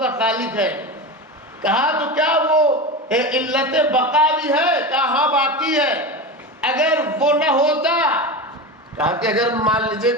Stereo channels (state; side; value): normal; both; correlation 0.24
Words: خالق ہے۔ کہا تو کیا وہ علت بقا بھی ہے؟ کہا ہاں باقی ہے۔ اگر وہ نہ ہوتا، کہا کہ اگر مان لیجئے